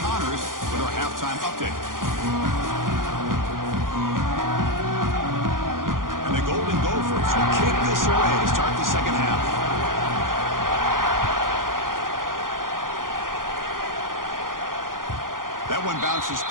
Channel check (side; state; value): left; late; 0.90 ms